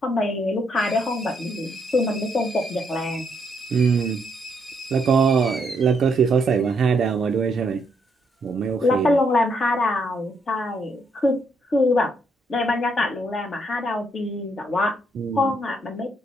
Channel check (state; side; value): normal; both; correlation 0.74